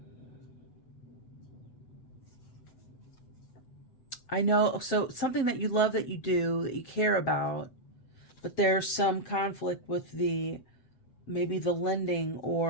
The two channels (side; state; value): right; late; 7.9 ms